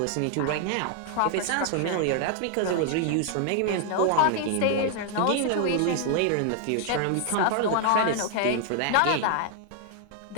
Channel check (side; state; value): both; different; correlation 0.00